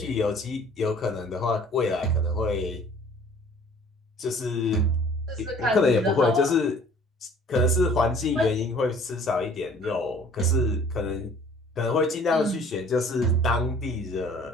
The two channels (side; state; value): both; normal; correlation 0.52